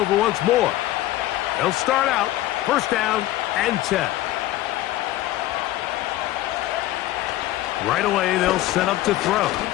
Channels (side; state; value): right; quieter; 15.4 dB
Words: once more. They'll start out 1st down and 10. Right away, they'll set up to throw.